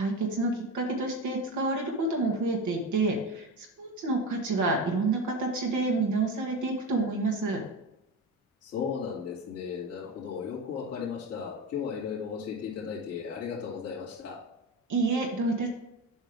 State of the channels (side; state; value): both; normal; correlation 0.23